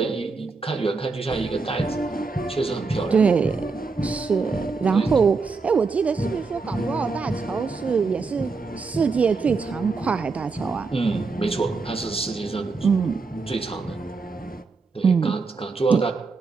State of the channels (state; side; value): quieter; left; 4.4 dB